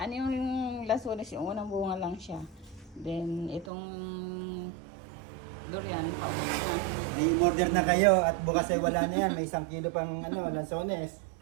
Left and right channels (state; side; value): drops out; left; at 3.7 s